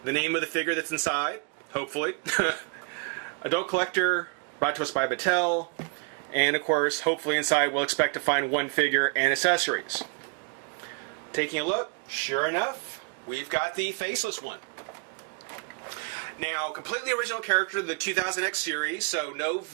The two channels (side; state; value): left; quieter; 37.2 dB